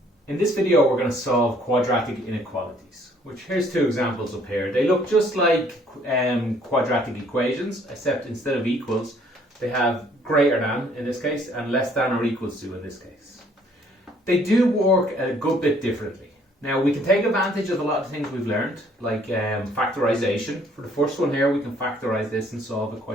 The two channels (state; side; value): normal; both; correlation 0.62